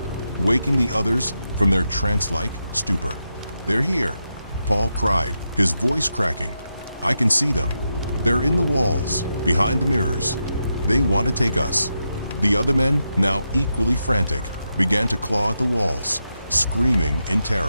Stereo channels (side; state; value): both; inverted; correlation -0.86